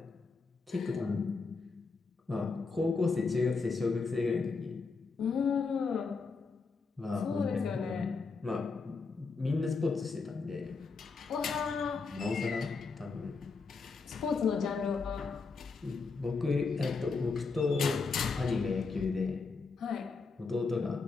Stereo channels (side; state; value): right; quieter; 4.5 dB